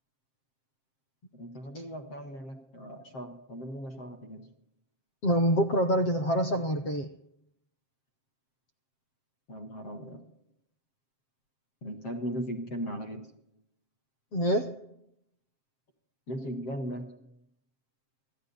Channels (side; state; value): right; late; 7.6 ms